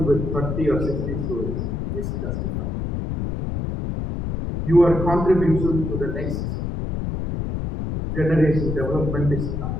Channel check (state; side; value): noise; left; rumble, 3 dB below the sound